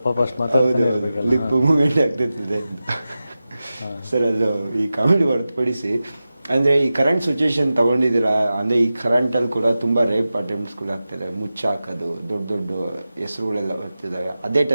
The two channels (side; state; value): both; inverted; correlation -0.94